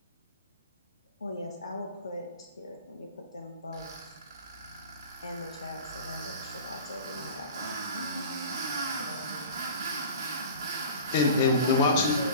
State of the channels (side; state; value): both; inverted; correlation -0.39